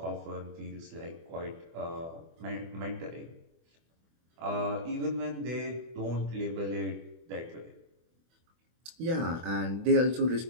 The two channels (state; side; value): late; left; 24 ms